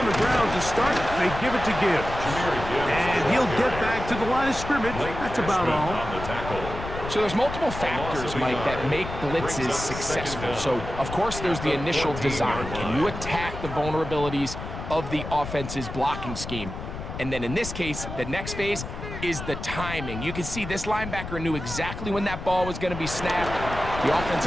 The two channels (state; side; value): noise; left; rumble, 8 dB below the sound